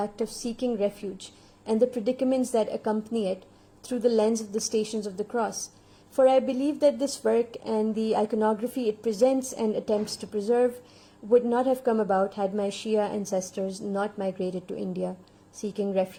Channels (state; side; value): identical; both; correlation 1.00